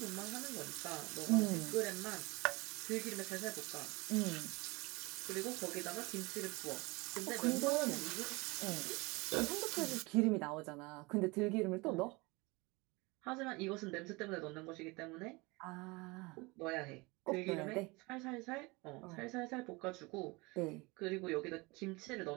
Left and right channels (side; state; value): left; quieter; 25.1 dB